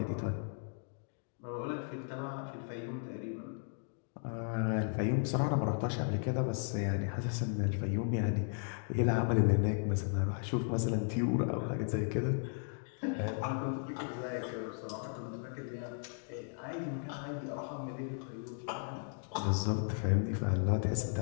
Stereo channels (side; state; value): right; silent; 54 dB below the other